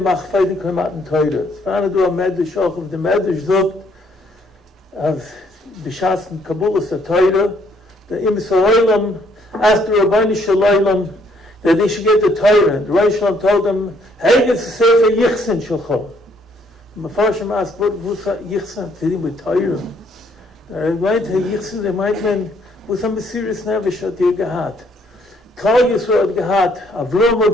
für die Klimaten Teure. Es war du am Medisch auch, auf dem Medisch sagt, als beschassen Kabulus der Teure, der im Soleilam, as the Rabbani Shalaylam, that they should get the Torah. The Rabbi Shalom told them, hey, it's a Sefer Yichsen Shulchan. The Mefarshim asked, what's Yichsen? To do with Torah. They went to Yichsen, they might mean, what's a Mesiris Nevish hat ihr gehad? Kol Yisrael hat gehad, Avrom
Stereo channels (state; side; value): normal; both; correlation 0.67